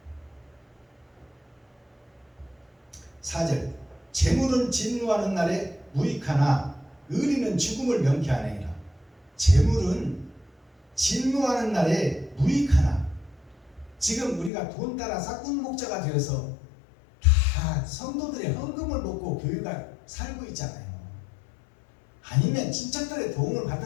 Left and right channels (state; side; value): drops out; right; at 14.5 s